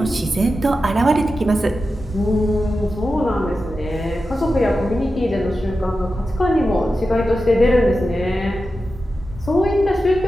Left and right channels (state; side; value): normal; both; correlation 0.92